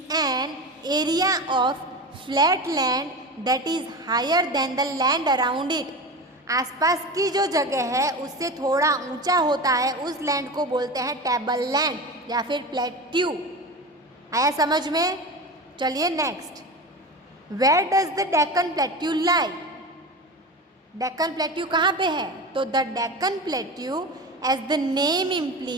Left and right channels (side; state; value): both; normal; correlation 0.27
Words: an area of flat land that is higher than the land around it. आसपास की जो जगह है उससे थोड़ा ऊंचा होता है, उस लैंड को बोलते हैं टेबल लैंड या फिर प्लेट्यू। आया समझ में। चलिए next, where does the Deccan plateau lie. Deccan plateau कहाँ पे है, तो the Deccan plateau as the name